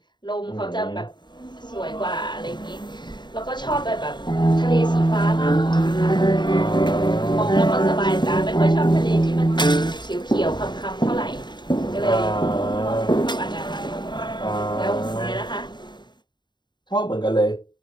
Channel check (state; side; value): late; right; 0.22 ms